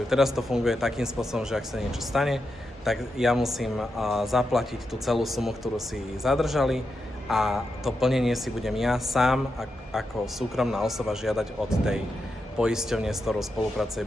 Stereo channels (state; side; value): normal; both; correlation 0.87